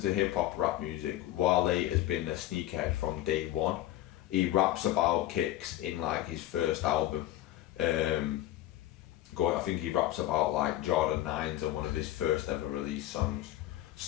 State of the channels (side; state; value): right; quieter; 14.5 dB